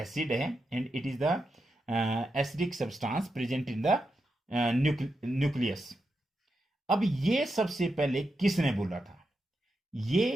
है and it is the acidic substance present in the nucleus. अब ये सबसे पहले किसने बोला था?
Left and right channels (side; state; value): both; normal; correlation 0.87